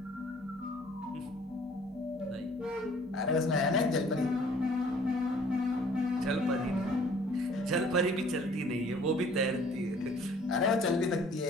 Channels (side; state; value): both; normal; correlation 0.55